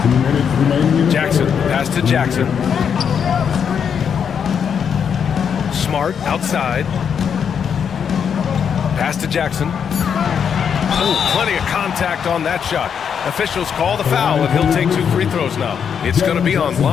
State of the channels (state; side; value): quieter; right; 7.4 dB